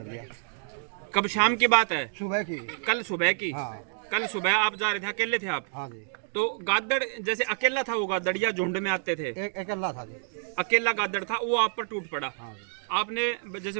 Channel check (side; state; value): left; silent; 59 dB below the other